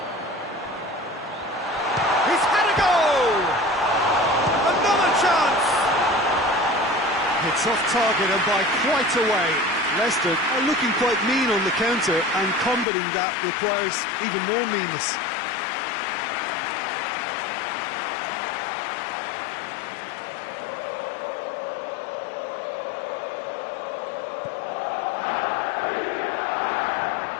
He's had a go! It's off target and by quite a way. Leicester are looking quite mean on the counter, and combating that requires even more meanness.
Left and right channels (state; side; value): drops out; right; at 12.9 s